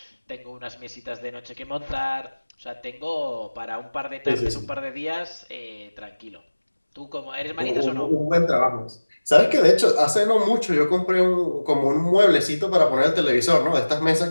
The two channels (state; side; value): inverted; both; correlation -1.00